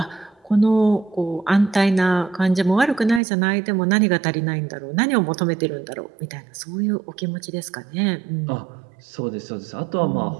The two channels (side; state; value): left; drops out; at 3.2 s